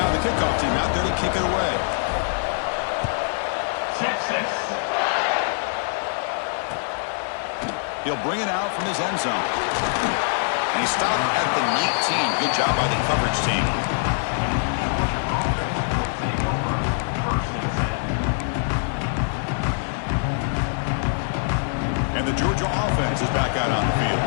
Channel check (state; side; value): silent; right; digital silence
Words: the kickoff team out there to kick it away. Texas. He'll bring it out from his end zone. And he stopped at the 19. Good job by the coverage team. And the Georgia offense is back out on the field.